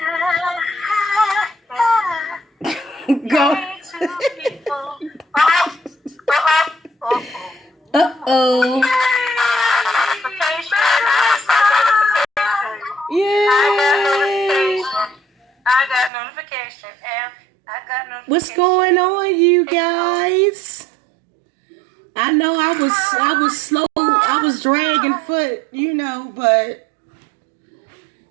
Go. Uh-oh. Yay. I got notification. What's going on, you guys? I know I was slow. I was dragging foot, you know, but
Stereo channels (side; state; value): left; drops out; at 16.1 s